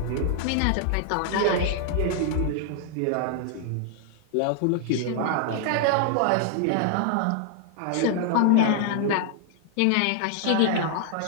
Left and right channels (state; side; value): different; both; correlation 0.00